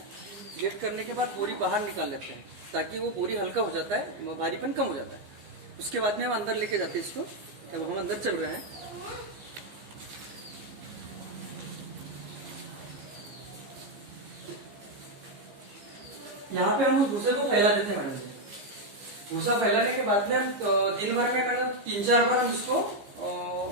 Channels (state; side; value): late; left; 15 ms